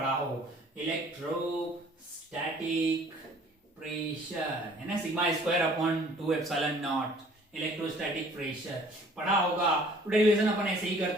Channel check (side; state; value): both; normal; correlation 0.54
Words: हो, electrostatic pressure है ना, sigma square upon 2 epsilon not, electrostatic pressure पढ़ा होगा। तो डेरिवेशन अपन ऐसे ही